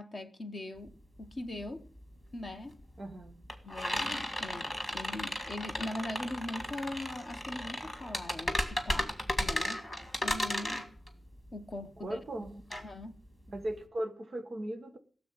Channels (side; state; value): both; normal; correlation 0.91